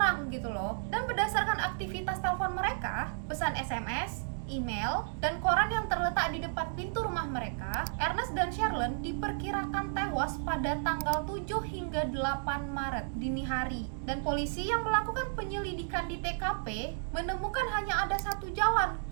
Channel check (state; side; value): silent; left; digital silence